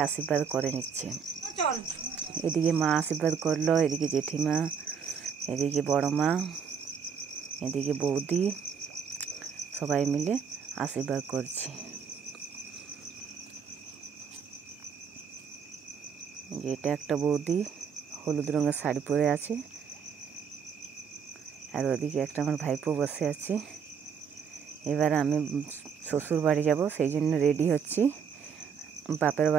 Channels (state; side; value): quieter; left; 6.7 dB